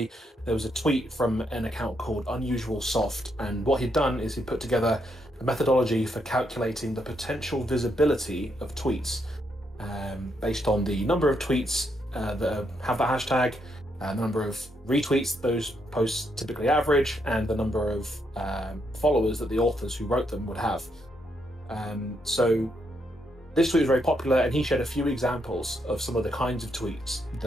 There was a tweet from an account called Unusual Soft, and what he'd done is he put together a methodology for calculating the potential visibility of tweets based on the number of tweets that have that hashtag, the number of retweets those posts typically average, and the number of followers that the authors who wrote them would have. So this tweet was very popular, and he shared a few examples of some of the kinds of tweets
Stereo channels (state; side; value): normal; both; correlation 0.77